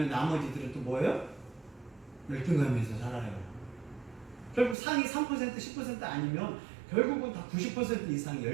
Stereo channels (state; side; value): drops out; left; at 4.8 s